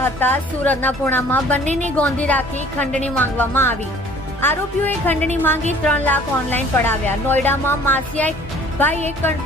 હતા. સુરતના પૂણામાં બંનેને ગોંધી રાખી ખંડણી માંગવામાં આવી. આરોપીઓએ ખંડણી માંગી 3 લાખ ઓનલાઈન પડાવ્યા. નોઈડામાં માસિયા ભાઈએ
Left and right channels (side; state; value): both; normal; correlation 0.52